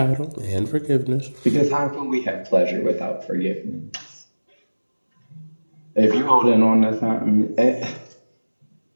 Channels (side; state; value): both; inverted; correlation -1.00